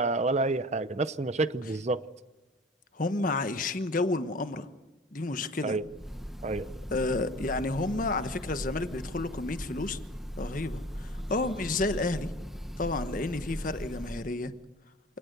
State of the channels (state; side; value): normal; both; correlation 0.42